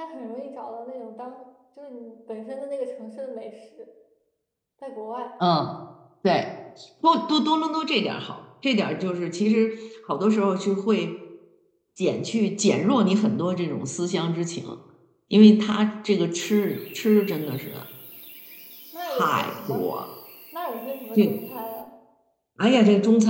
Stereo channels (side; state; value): both; identical; correlation 1.00